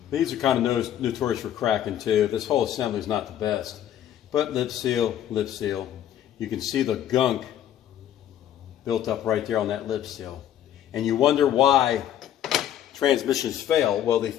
These are kind of notorious for cracking too. This whole assembly is not the best. But lip seal. You can see the gunk built up right there on that lip seal. And you wonder why transmissions fail. Well, they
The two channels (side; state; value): right; quieter; 10.9 dB